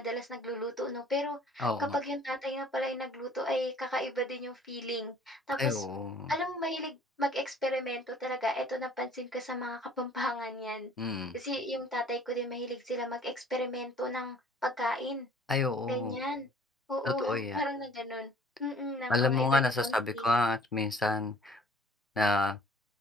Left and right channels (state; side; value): normal; both; correlation 0.53